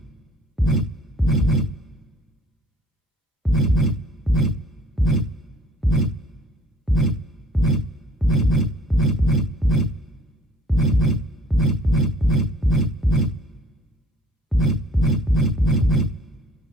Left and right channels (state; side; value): normal; both; correlation 0.56